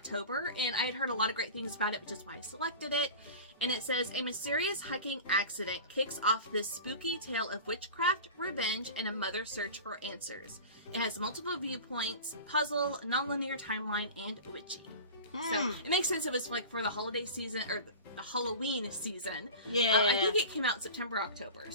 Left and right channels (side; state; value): both; inverted; correlation -0.34